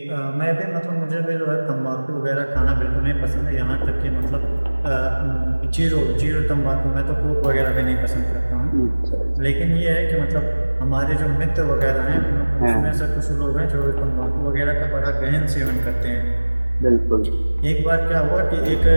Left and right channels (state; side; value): inverted; both; correlation -1.00